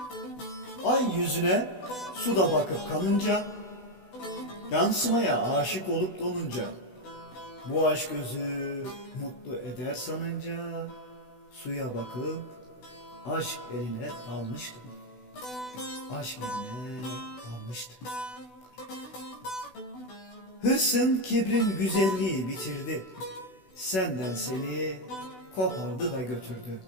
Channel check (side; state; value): right; late; 16 ms